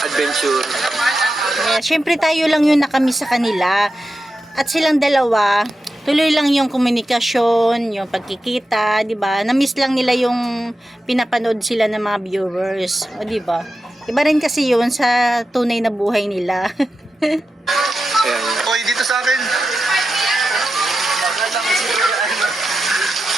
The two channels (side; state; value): both; normal; correlation 0.90